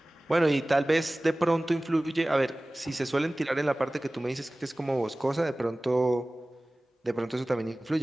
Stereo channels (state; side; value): normal; both; correlation 0.98